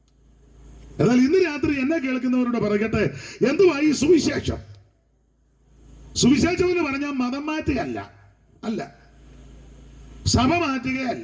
എന്നാൽ ഇന്ന് രാത്രി എന്നെ കേൾക്കുന്നവരോട് പറയട്ടെ, എന്തുവാ ഈ സുവിശേഷം? സുവിശേഷം എന്ന് പറഞ്ഞാൽ മതം മാറ്റുകയല്ല, സഭ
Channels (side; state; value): both; identical; correlation 1.00